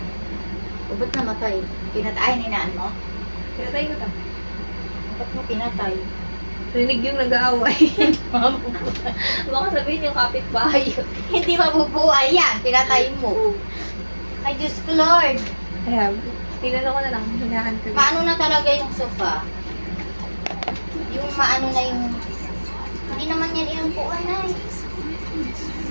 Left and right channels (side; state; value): both; inverted; correlation -1.00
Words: O, ba't namatay? Pinatay ni naan mo? Pinatay ko ta. Ba't mo pinatay? Rinig yung nag-aaway. Baka sabihin yung kapitbahay yun. Hindi mabubuhay yan. Pinatay mo. Ay, Diyos ko, Lord. Kaya, tinanong ko na lang, hinahan ko. Paano na talaga yung sofa? Yung maano na yung... Hindi naman yan inupuan na eh.